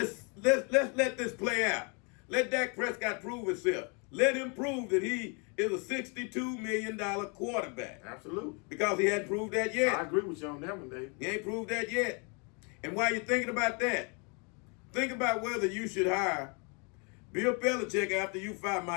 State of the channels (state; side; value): quieter; right; 34.5 dB